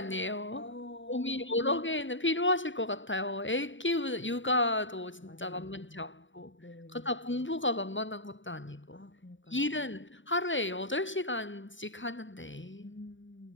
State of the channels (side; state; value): right; late; 0.55 ms